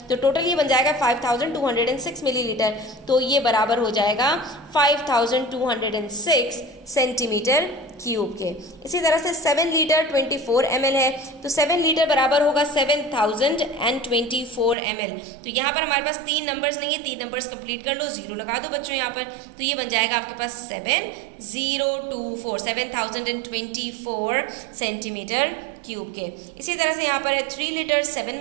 तो टोटल ये बन जाएगा 5206 मिलीलीटर, तो ये बराबर हो जाएगा 5206 सेंटीमीटर क्यूब के। इसी तरह से 7 लीटर 24 ml है, तो 7 लीटर बराबर होगा 7024 ml। तो यहाँ पर हमारे पास 3 नंबर्स नहीं है, 3 नंबर्स कंप्लीट कर लो, 0 लगा दो बच्चों यहाँ पर, तो ये बन जाएगा आपके पास 7024 सेंटीमीटर क्यूब के। इसी तरह से यहाँ पर है 3 लीटर 7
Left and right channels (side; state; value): left; drops out; at 14.8 s